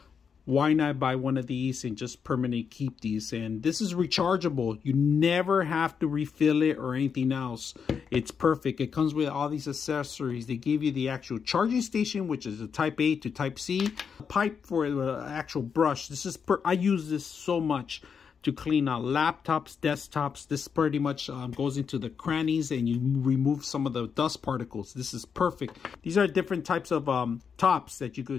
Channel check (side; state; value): right; quieter; 6.5 dB